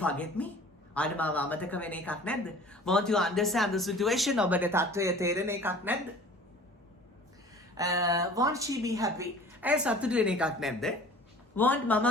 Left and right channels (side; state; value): both; normal; correlation 0.46